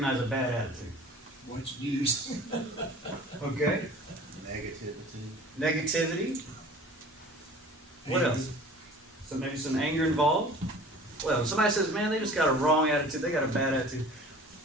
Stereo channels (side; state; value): both; normal; correlation 0.44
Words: a bad attitude? Watch news. Okay. Negativity. What else? So maybe some anger involved. Well, if somebody says, man, they just got a wrong attitude, they got a bad attitude,